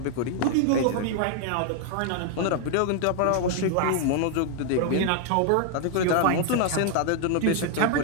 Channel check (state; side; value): different; both; correlation 0.00